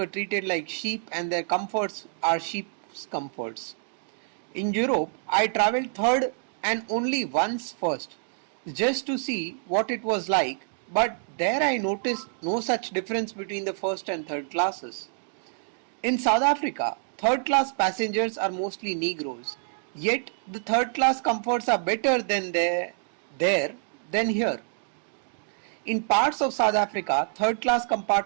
treated like sheep and their comforts are sheep's comforts. In Europe, I travelled third and only once first, just to see what it was like, but there I noticed no such difference between the first and third classes. In South Africa, third class passengers are mostly Negroes, yet the third class comforts are better there than here. In parts of South Africa, third class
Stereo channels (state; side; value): silent; left; digital silence